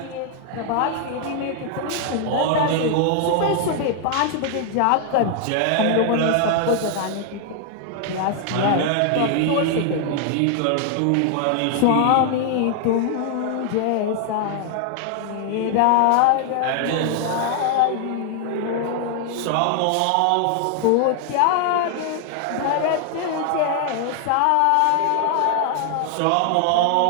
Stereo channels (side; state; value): both; different; correlation 0.00